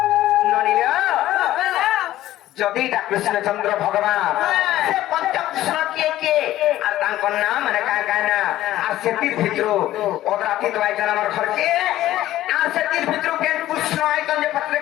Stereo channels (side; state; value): right; quieter; 14.3 dB